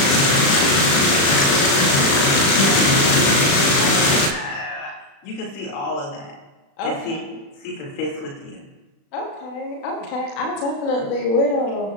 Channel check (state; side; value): late; right; 36 ms